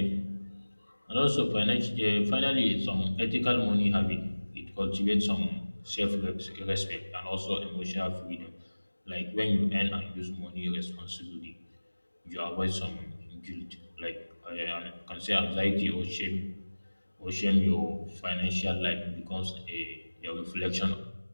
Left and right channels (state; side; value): inverted; both; correlation -1.00